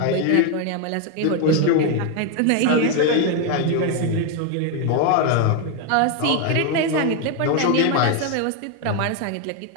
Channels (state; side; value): different; both; correlation 0.01